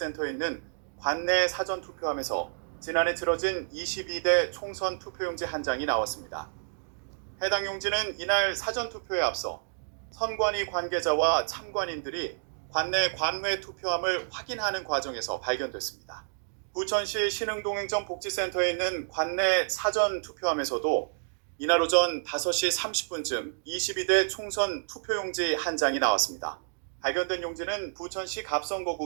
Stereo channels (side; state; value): left; silent; digital silence